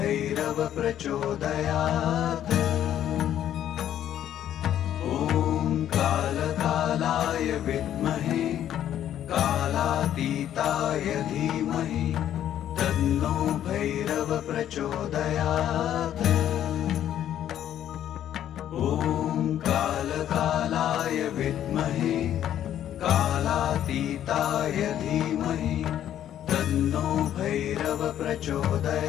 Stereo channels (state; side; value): quieter; right; 11.0 dB